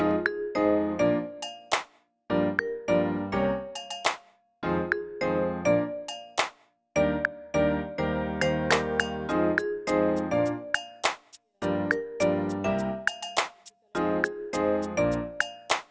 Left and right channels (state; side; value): identical; both; correlation 1.00